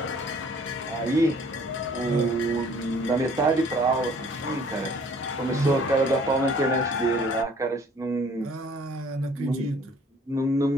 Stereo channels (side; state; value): both; normal; correlation 0.55